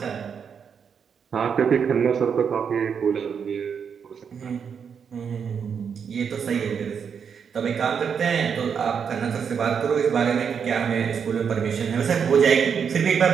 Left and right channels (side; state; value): left; quieter; 6.9 dB